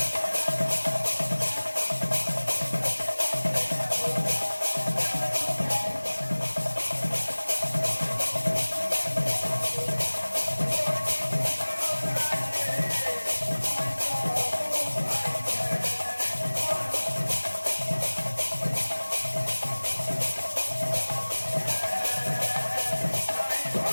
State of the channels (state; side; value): inverted; both; correlation -1.00